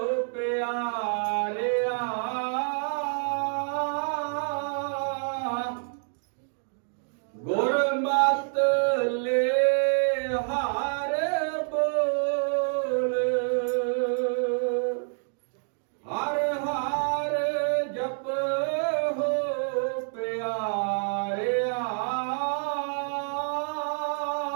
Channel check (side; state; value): left; silent; 60 dB below the other